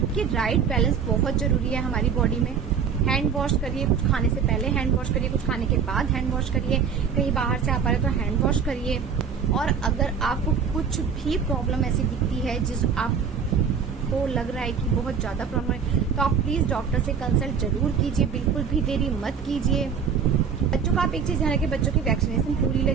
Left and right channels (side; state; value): left; quieter; 6.6 dB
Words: कि राइट बैलेंस बहुत जरूरी है हमारी बॉडी में। हैंड वॉश करिए, कुछ खाने से पहले हैंड वॉश करिए, कुछ खाने के बाद हैंड वॉश करिए। कहीं बाहर से आप आ रहे तो हैंड वॉश करिए। और अगर आपको कुछ भी प्रॉब्लम ऐसी दिखती है जिस आपको लग रहा है कि बहुत ज्यादा प्रॉब्लम है, तो आप प्लीज डॉक्टर से कंसल्ट जरूर कीजिए, बिल्कुल भी देरी मत कीजिए। बच्चों का आप एक चीज ध्यान रखिए, बच्चों की वैक्सीनेशन पूरी